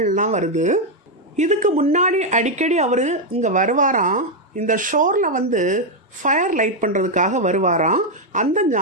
வருது. இதுக்கு முன்னாடி அடிக்கடி அவர் இங்கே வருவாராம். இந்த ஷோரில் வந்து ஃபயர் லைட் பண்ணுறதுக்காக வருவாராம். அந்த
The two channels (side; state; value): both; normal; correlation 0.01